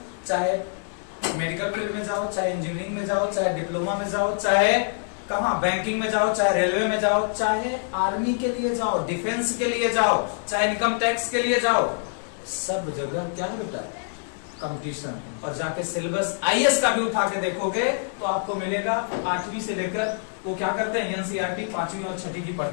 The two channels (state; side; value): silent; right; digital silence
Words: चाहे मेडिकल फील्ड में जाओ, चाहे इंजीनियरिंग में जाओ, चाहे डिप्लोमा में जाओ, चाहे कहां बैंकिंग में जाओ, चाहे रेलवे में जाओ, चाहे आर्मी के लिए जाओ, डिफेंस के लिए जाओ, चाहे इनकम टैक्स के लिए जाओ, सब जगह क्या है बेटा? कंपटीशन। और जाके सिलेबस आईएएस का भी उठा के देखोगे तो आपको मिलेगा 8वीं से लेकर वो क्या करते हैं, एनसीईआरटी 5वीं और 6वीं की